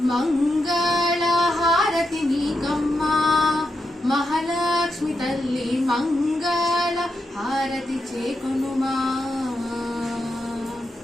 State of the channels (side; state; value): both; normal; correlation 0.85